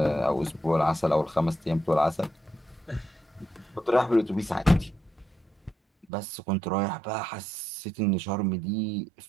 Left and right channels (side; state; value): left; drops out; at 6.1 s